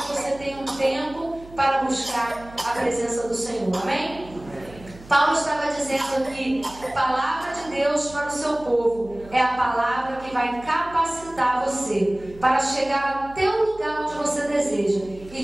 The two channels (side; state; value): right; noise; hum, 20 dB below the sound